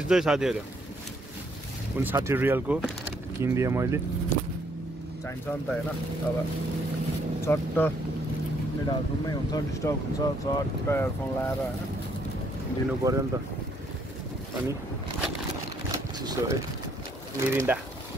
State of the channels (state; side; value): normal; both; correlation 0.69